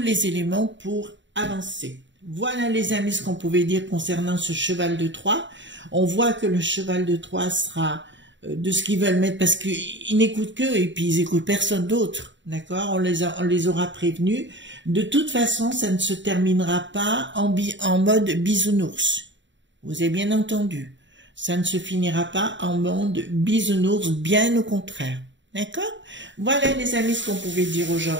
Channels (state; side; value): late; left; 0.54 ms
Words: les éléments pour avancer. Voilà les amis ce qu'on pouvait dire concernant ce cheval de Troie. On voit que le cheval de Troie sera de ce qu'ils veulent mettre parce qu'ils n'écoutent qu'eux et puis ils écoutent personne d'autre. D'accord, on les aura prévenus. De toute façon, ça ne se terminera pas en mode bisounours. Vous avez bien entendu. Ça ne se finira pas en mode bisounours, bien au contraire. D'accord? Voilà les amis ce qu'on pouvait dire